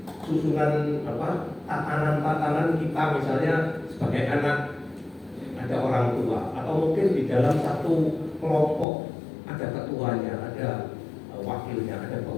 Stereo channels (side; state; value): right; drops out; at 8.8 s